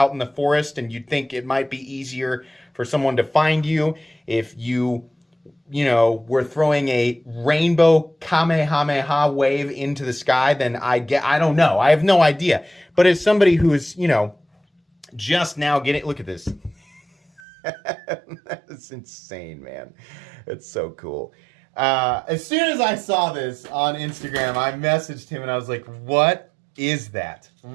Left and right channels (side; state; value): left; drops out; at 17.4 s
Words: in the forest and you think it might be easier for someone to find you, if you were throwing a rainbow Kamehameha wave into the sky, then I don't know. I have no idea. But as somebody who is, just now getting, look at this. That's insane, man. It's so cool. As soon as I saw this on Instagram, I messaged him and I was like, what is that?